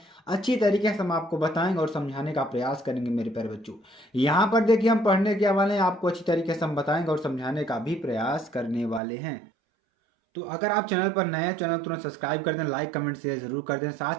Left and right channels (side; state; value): left; drops out; at 9.0 s